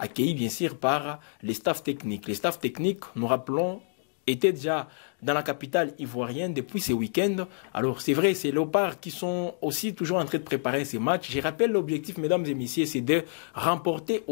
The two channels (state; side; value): silent; right; digital silence